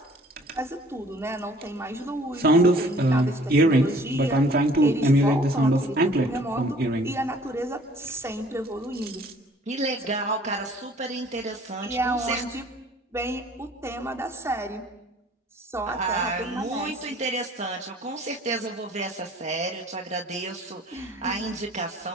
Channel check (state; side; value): normal; both; correlation 0.54